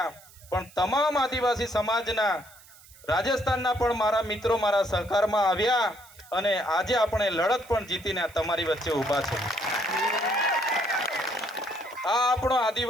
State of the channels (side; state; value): right; noise; hiss, 23 dB below the sound